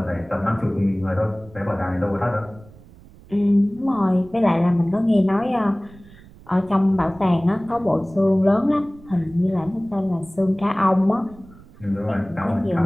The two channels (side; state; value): right; noise; rumble, 23 dB below the sound